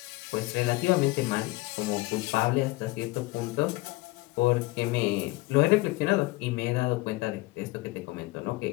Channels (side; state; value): right; quieter; 21.2 dB